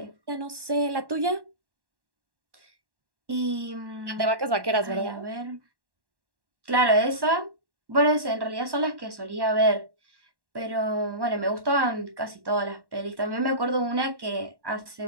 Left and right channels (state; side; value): late; left; 1.1 ms